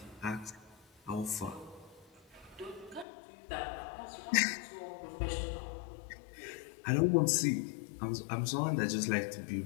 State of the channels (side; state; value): right; drops out; at 3.1 s